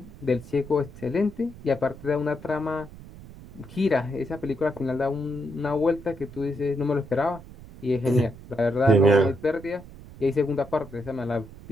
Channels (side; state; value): right; noise; rumble, 17 dB below the sound